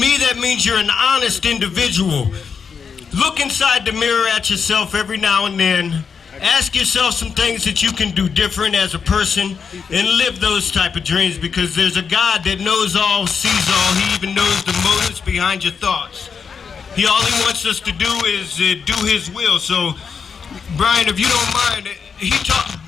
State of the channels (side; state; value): right; quieter; 6.2 dB